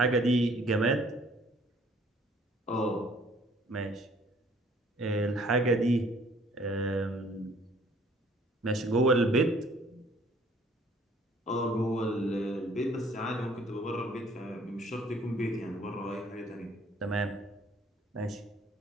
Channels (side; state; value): both; normal; correlation 0.58